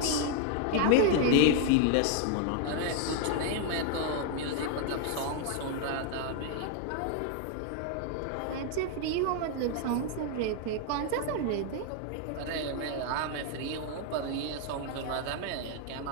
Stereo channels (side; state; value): both; different; correlation 0.00